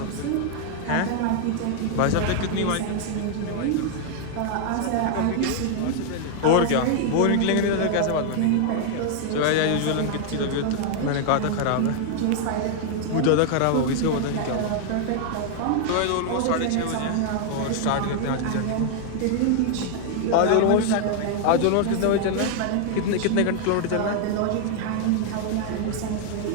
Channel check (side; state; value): both; different; correlation 0.00